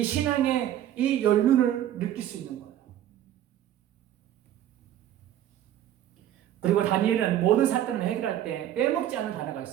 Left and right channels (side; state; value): left; quieter; 11.7 dB